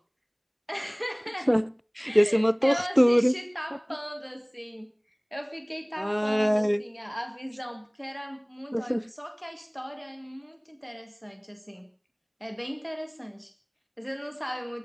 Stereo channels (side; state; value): both; identical; correlation 1.00